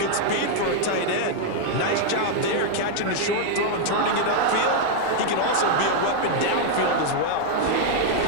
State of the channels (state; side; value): different; both; correlation 0.00